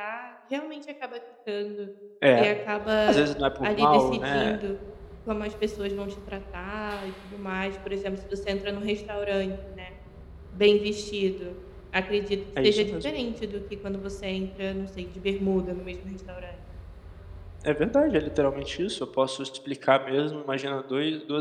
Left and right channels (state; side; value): identical; both; correlation 1.00